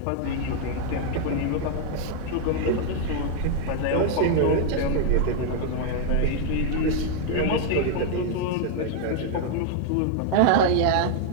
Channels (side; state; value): both; different; correlation 0.00